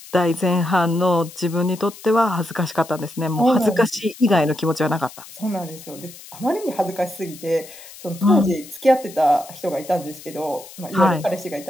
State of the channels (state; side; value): noise; left; hiss, 18 dB below the sound